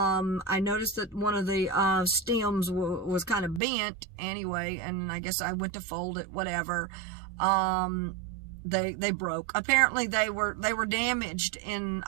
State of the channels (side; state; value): left; drops out; at 3.6 s